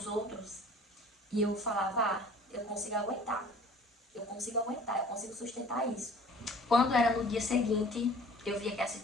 outros, e eu falava: ah, eu consigo aguentar, eu consigo sustentar isso. Quando era no dia seguinte, eu via que a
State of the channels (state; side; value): normal; both; correlation 0.48